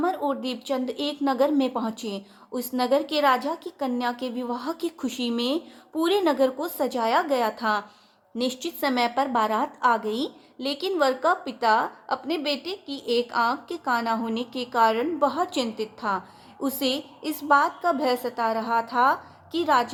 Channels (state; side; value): identical; both; correlation 1.00